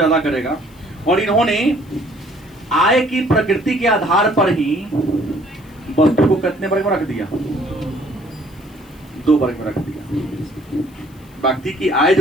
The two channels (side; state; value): left; noise; hiss, 29 dB below the sound